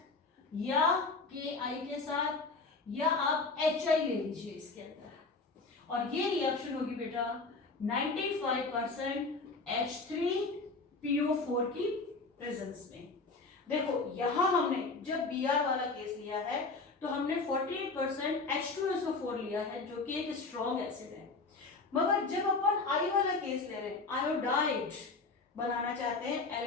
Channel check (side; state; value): right; quieter; 3.9 dB